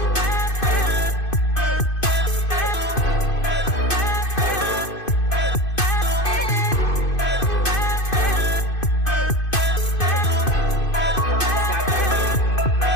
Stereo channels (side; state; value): right; late; 2.5 ms